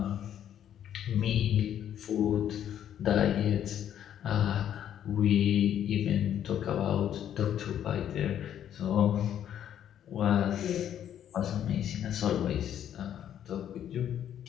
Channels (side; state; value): right; quieter; 10.2 dB